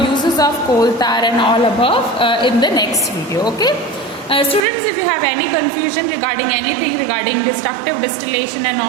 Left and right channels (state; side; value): drops out; left; at 4.7 s